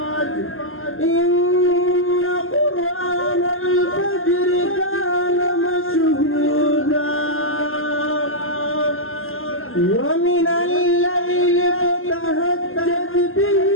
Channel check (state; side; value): late; right; 0.60 ms